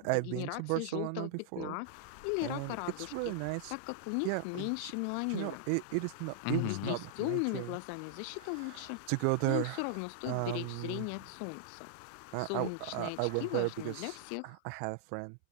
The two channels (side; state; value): both; different; correlation -0.01